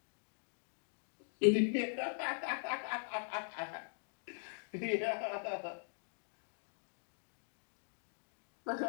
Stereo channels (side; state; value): right; silent; digital silence